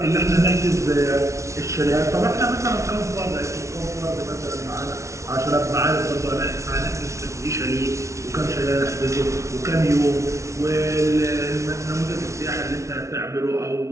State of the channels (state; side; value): late; left; 0.14 ms